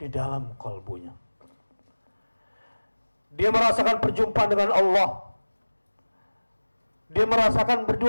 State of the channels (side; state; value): both; inverted; correlation -1.00